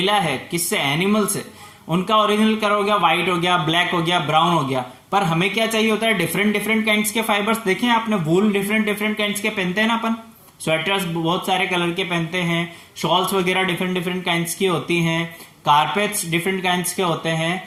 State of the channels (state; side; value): identical; both; correlation 1.00